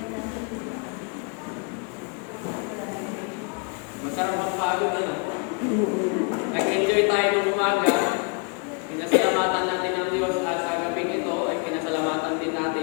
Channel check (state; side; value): quieter; right; 33.8 dB